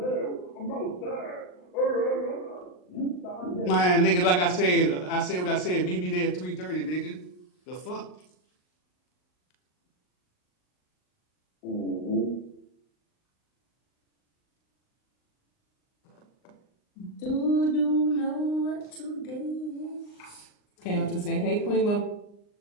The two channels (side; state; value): right; late; 39 ms